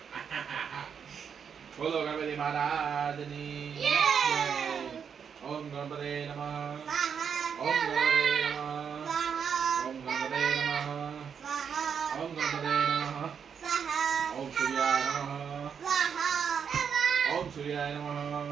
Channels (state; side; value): quieter; left; 7.1 dB